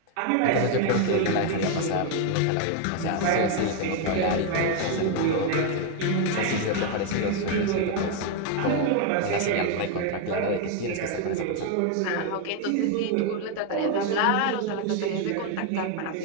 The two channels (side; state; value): both; different; correlation 0.01